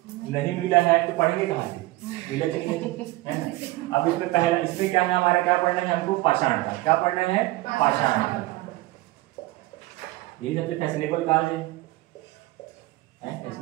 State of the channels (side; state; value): left; quieter; 19.4 dB